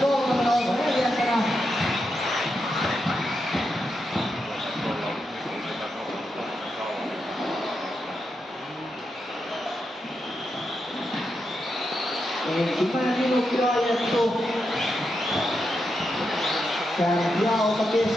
kolmana, Oiva neljäntenä. Ensimmäinen minuutti ajettu. Kärkiauto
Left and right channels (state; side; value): normal; both; correlation 0.85